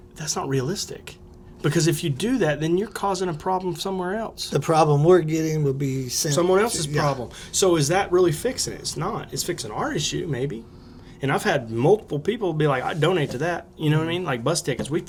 that's not realistic, because if you do that, then you're causing a problem somewhere else. the problem we're getting will be Someone else's problem. So is that really fixing it? It's not. It's fixing our issue, maybe. And I've had multiple people be like, I donate to that. You know what I mean? Like bus tickets, we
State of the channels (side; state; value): both; identical; correlation 1.00